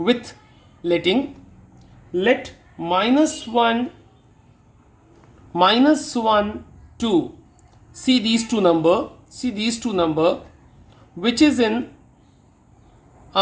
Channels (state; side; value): identical; both; correlation 1.00